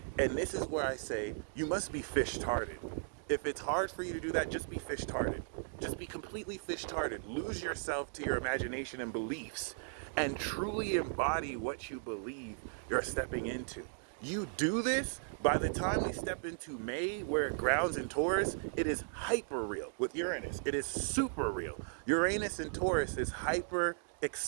And this is where I say you must be fish-tarded. If it's hard for you to do that, just be fish-tarded. Just be completely fish-tarded. Lose yourself to your imagination and beliefs, and truly embody what you believe you're stepping into. You do this, by the time we step into May, where it grounds in Taurus, it is hyper real. With Uranus, it is super real. Uranus in Taurus is hyper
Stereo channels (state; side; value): silent; left; digital silence